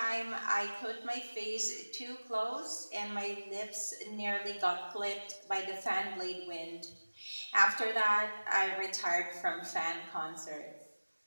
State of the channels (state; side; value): inverted; both; correlation -1.00